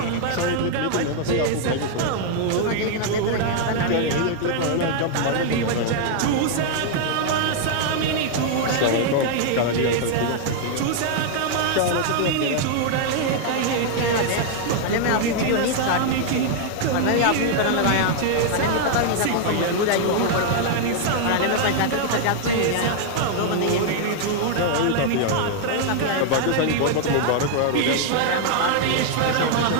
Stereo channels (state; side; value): different; both; correlation 0.00